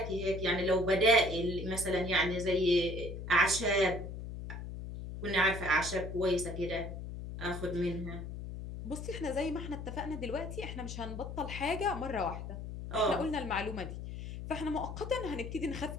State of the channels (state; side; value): noise; left; hum, 8 dB below the sound